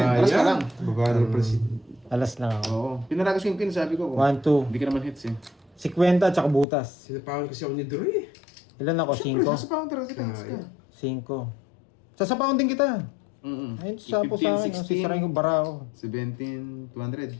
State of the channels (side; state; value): right; drops out; at 6.7 s